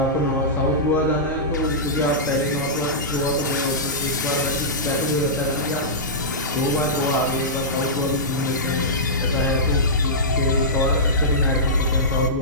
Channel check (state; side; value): normal; both; correlation -0.15